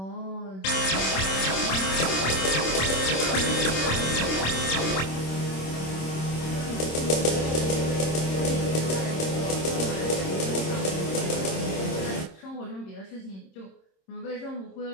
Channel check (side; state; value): right; late; 26 ms